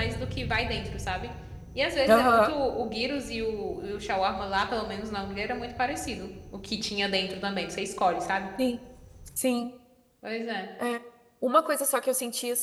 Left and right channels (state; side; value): identical; both; correlation 1.00